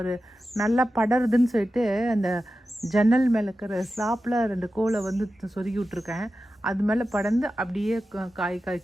நல்லா படருதுன்னு சொல்லிட்டு அந்த ஜன்னல் மேலே இருக்கிற ஸ்லாப்பில் 2 கோலை வந்து சொருகி விட்ருக்கேன். அது மேலே படர்ந்து அப்படியே காய்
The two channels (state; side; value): normal; both; correlation 0.92